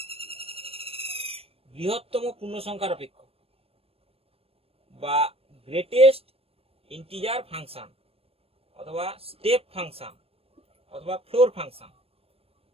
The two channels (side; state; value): left; late; 0.28 ms